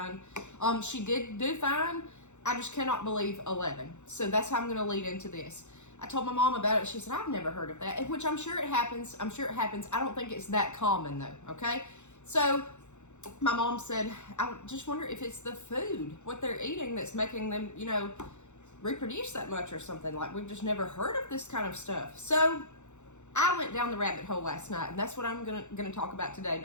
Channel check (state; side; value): late; right; 0.83 ms